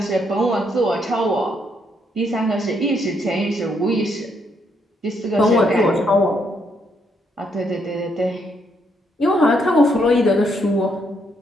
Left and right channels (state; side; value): normal; both; correlation 0.74